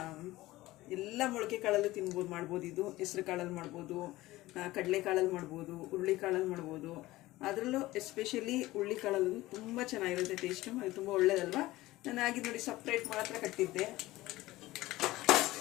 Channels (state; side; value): quieter; right; 17.9 dB